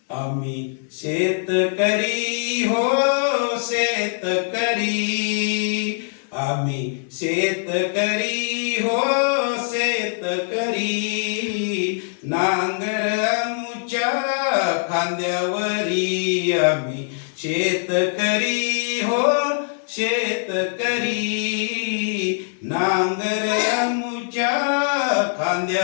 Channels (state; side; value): silent; right; digital silence